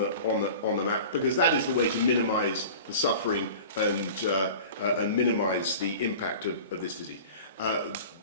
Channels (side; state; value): both; inverted; correlation -0.39